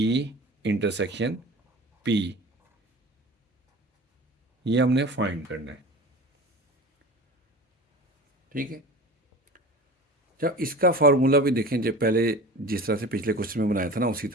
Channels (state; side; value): normal; both; correlation 0.36